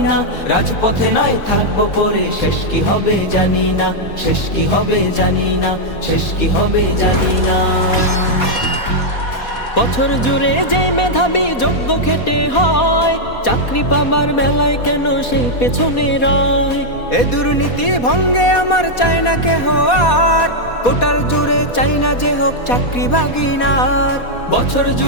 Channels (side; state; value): right; late; 4.2 ms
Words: না। রাজপথে নয় থাকবো পরে, শেষ কি হবে জানি না, শেষ কি হবে জানি না, শেষ কি হবে জানি না। বছর জুড়ে যে মেধাবী যোগ্য খেটে হয়, চাকরি পাবার বেলায় কেন সেই পেছনে রয়? এ দুর্নীতি ভঙ্গে আমার চাই না কেহ আর, কোটার জুড়ে চাই না যে হোক চাকরি ভাগিনার। বছর